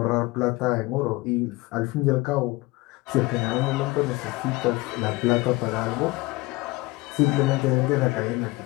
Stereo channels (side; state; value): right; quieter; 21.7 dB